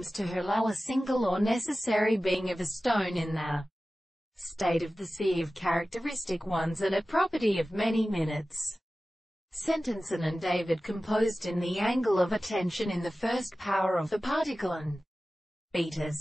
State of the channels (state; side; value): normal; both; correlation 0.96